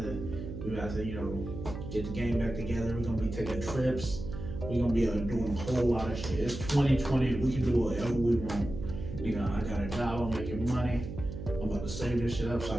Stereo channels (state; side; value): noise; right; hum, 8 dB below the sound